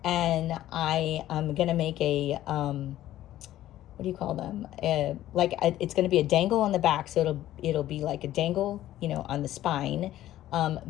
And I am going to make a, what do you call them? It's going to be a dangle on the back. So it'll be like a dangle, on the spine.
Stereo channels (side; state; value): right; quieter; 13.7 dB